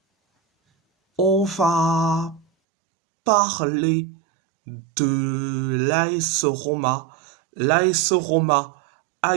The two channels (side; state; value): left; drops out; at 2.5 s